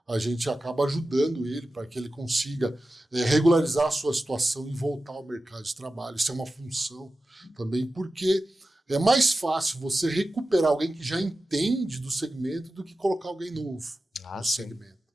a gente acaba ajudando ele para que ele consiga regularizar a sua situação e voltar ao mercado de trabalho. Isso é uma função também, porque é mais fácil você recuperar alguém que já entende do segmento do que colocar alguém novo no segmento.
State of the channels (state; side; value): normal; both; correlation 0.94